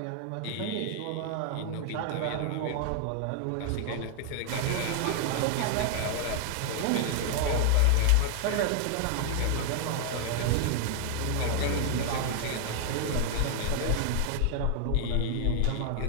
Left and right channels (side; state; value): both; different; correlation 0.00